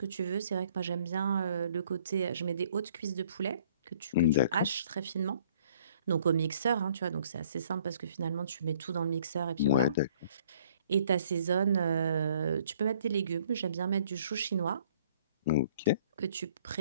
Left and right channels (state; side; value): inverted; both; correlation -0.60